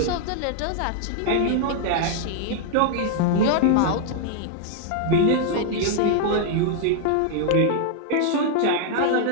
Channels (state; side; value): different; both; correlation -0.01